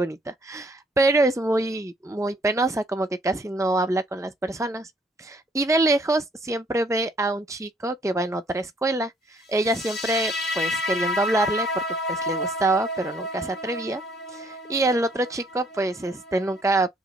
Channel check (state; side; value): normal; both; correlation 0.64